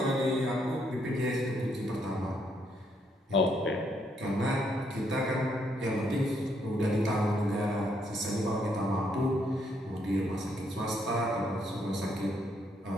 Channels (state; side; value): normal; both; correlation 0.74